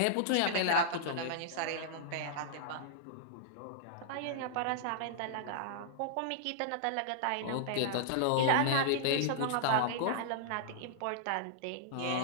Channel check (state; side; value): different; both; correlation -0.02